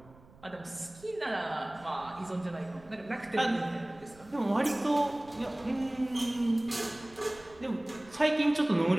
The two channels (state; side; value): noise; right; rumble, 24 dB below the sound